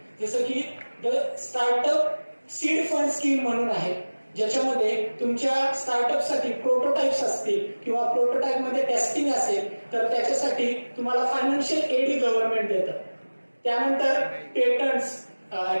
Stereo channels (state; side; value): inverted; both; correlation -1.00